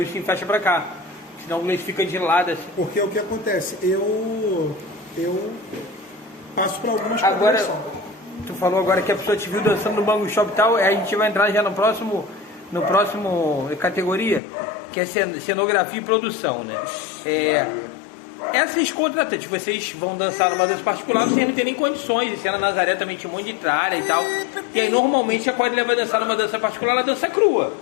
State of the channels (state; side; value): drops out; right; at 14.4 s